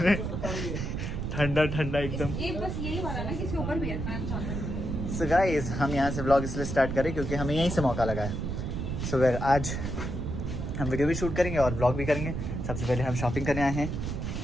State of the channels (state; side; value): noise; right; rumble, 3 dB below the sound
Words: ठंडा ठंडा एकदम। ये बस यही वाला ना किसी ऊपर भी है। सो गाइस हम यहाँ से व्लॉग इसलिए स्टार्ट करें क्योंकि हमें यहीं से मौका लगा है। सो फिर आज हम वीडियो भी शूट करेंगे और व्लॉग भी करेंगे। सबसे पहले हम शॉपिंग करने आए हैं।